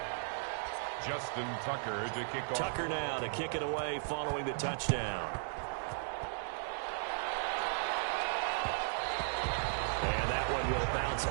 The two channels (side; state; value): left; silent; digital silence